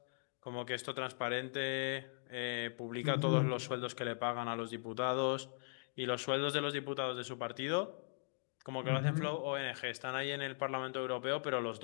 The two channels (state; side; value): silent; right; digital silence